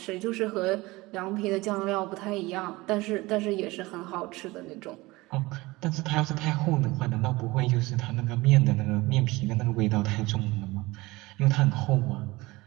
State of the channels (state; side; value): quieter; left; 21.2 dB